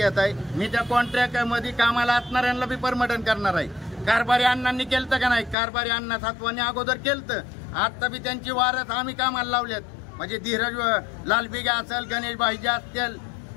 मी त्या कॉन्ट्रॅक्टमध्ये कामाला असणाऱ्यांना बी परमटन करणार आहे. कारभारी अण्णांनी केलं का नाही? कारभारी अण्णा सातवानी अगोदर केलं. आता बी त्यांची वारस आम्ही कामाला लावल्यात. म्हणजे धीरज लालबिगा असेल, गणेश भाईजी असतील,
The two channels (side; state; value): right; drops out; at 5.6 s